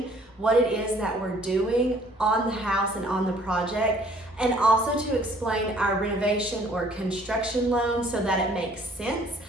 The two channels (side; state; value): both; normal; correlation 0.58